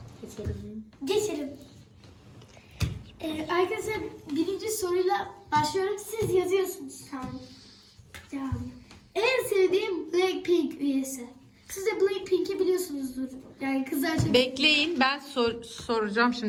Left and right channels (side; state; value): both; identical; correlation 1.00